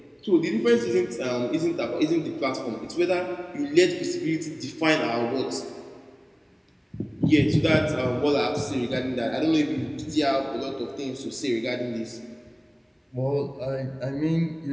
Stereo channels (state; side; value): identical; both; correlation 1.00